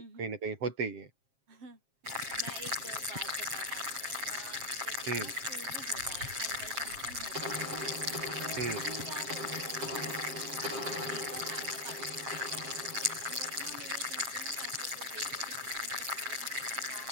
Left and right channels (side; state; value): left; late; 7.5 ms